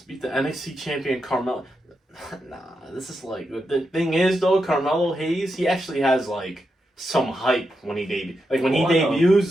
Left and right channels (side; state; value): both; normal; correlation 0.86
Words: beat the NXT champion Carmelo. Nah, this is like, the thing is though, Carmelo Hayes, he actually has like some hype when he debuts. Like when he debuts,